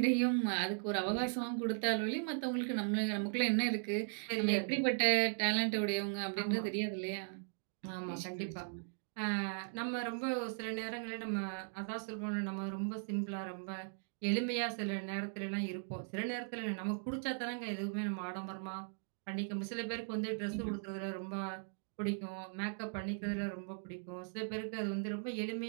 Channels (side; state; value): left; silent; digital silence